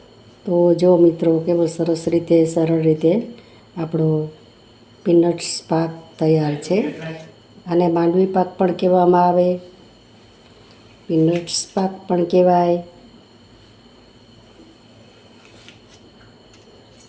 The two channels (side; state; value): both; identical; correlation 1.00